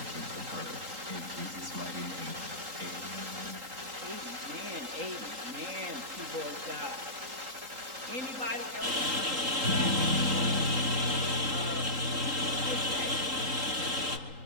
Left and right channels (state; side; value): late; left; 3.8 ms